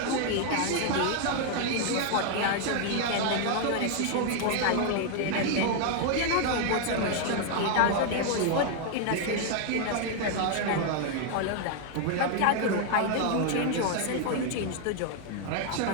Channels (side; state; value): both; different; correlation 0.00